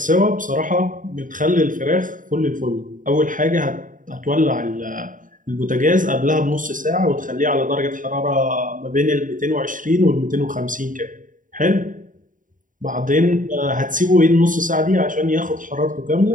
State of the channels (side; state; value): left; late; 0.38 ms